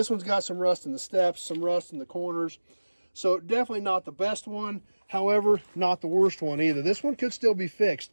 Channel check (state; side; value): inverted; both; correlation -1.00